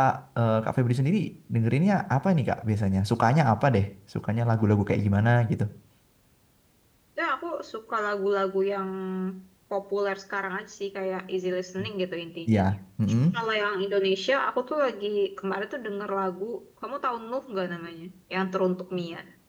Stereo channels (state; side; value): identical; both; correlation 1.00